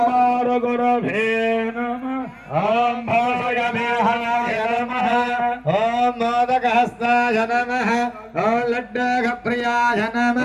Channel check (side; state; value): both; identical; correlation 1.00